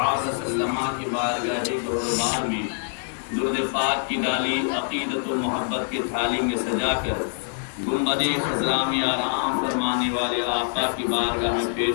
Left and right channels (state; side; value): silent; right; digital silence